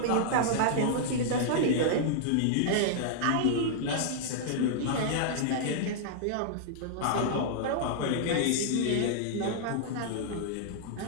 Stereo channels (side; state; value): both; different; correlation -0.01